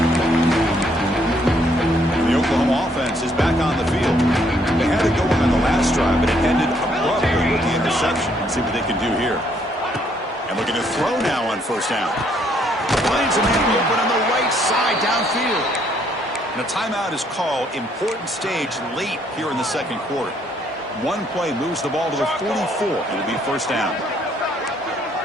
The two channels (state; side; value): normal; both; correlation 0.68